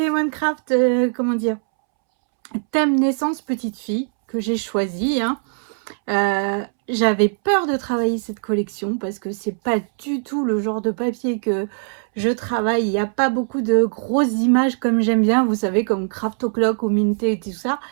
comment dire, thème naissance petite fille, que j'ai choisi, hein. J'avais peur de travailler cette collection parce que c'est pas du tout le genre de papier que je travaille. Il n'y a pas beaucoup de grosses images comme j'aime bien, vous savez, comme Craft O'Clock ou Minté et tout ça.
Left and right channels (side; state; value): left; silent; 65 dB below the other